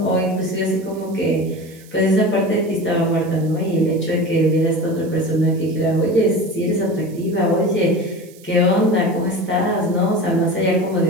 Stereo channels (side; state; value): right; noise; hiss, 25 dB below the sound